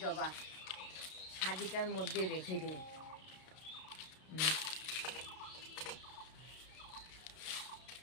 জবা, সাজিটার মধ্যে রেখে দিই।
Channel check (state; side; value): late; right; 32 ms